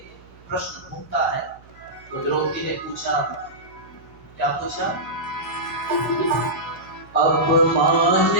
प्रश्न घूमता है। तो द्रौपदी ने पूछा, क्या पूछा? अपमान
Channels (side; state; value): right; noise; hum, 24 dB below the sound